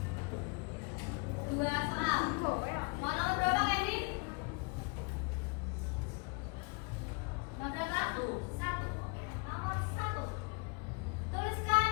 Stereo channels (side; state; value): right; quieter; 30.5 dB